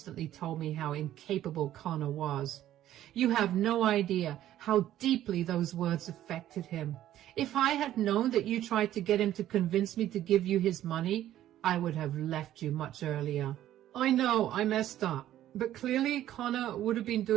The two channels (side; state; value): left; quieter; 12.7 dB